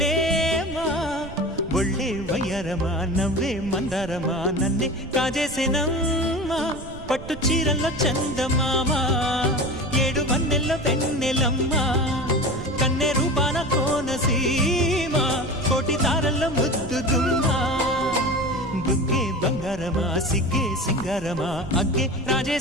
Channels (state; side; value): noise; right; rumble, 13 dB below the sound